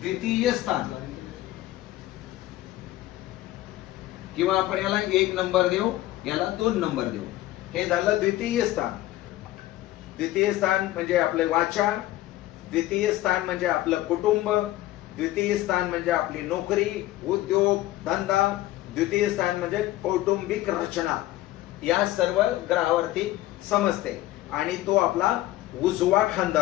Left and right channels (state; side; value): quieter; right; 15.8 dB